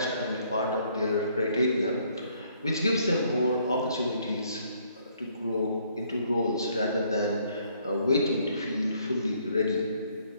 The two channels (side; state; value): both; inverted; correlation -0.66